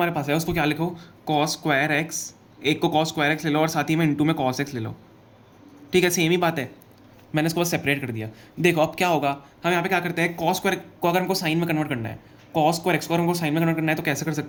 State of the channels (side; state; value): both; identical; correlation 1.00